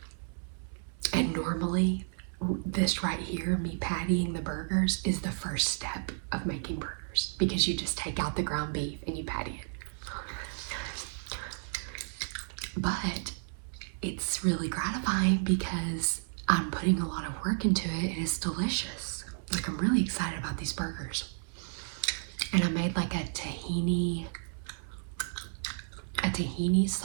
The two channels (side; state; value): left; silent; 56 dB below the other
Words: And normally, this right here, me pattying the burgers, is the first step of making burgers, because you just take out the ground beef and you patty it. But it's really gratifying because I'm putting a lot of work into it, and it's delicious. Like, I'm really excited about these burgers. And I made like a tahini